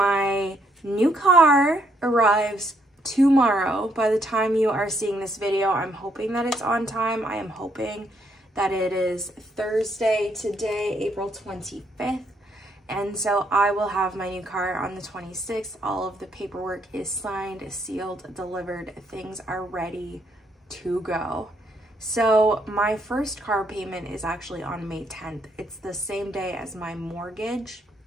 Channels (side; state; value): both; normal; correlation 0.72